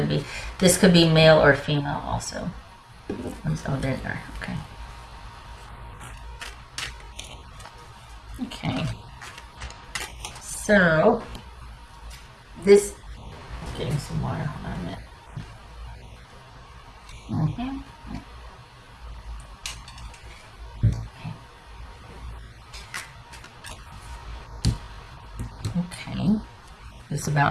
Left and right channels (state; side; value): identical; both; correlation 1.00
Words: be. This could be male or female also. Oh, there they are. Okay. Okay. So, this. Getting some water. Hold on a minute. Okay. This is